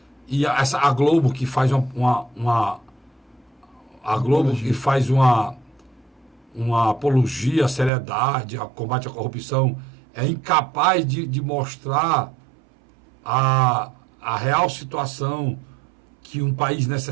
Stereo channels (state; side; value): drops out; left; at 7.9 s